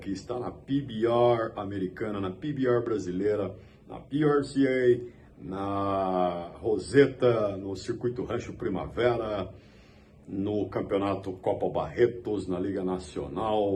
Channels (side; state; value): both; identical; correlation 1.00